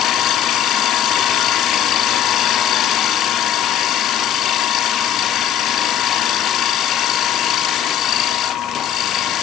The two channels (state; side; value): quieter; right; 10.1 dB